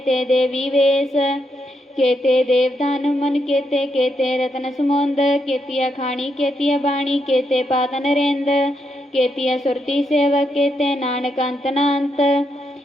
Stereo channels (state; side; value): normal; both; correlation 0.80